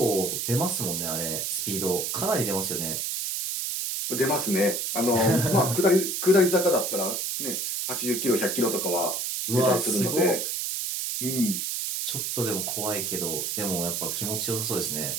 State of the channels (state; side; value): noise; right; hiss, 2 dB below the sound